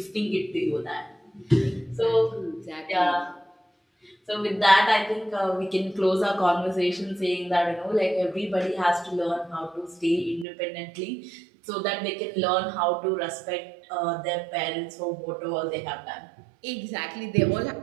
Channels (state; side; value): drops out; left; at 10.5 s